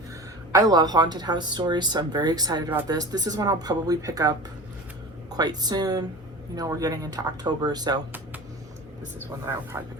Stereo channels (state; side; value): normal; both; correlation 0.34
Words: I love haunted house stories, so I'm very excited about this. This is one I'll probably pick up quite soon. We're getting into October, so this is one that I'll probably pick